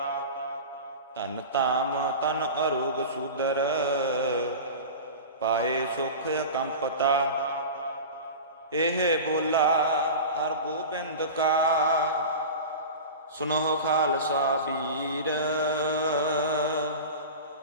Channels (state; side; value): inverted; both; correlation -0.31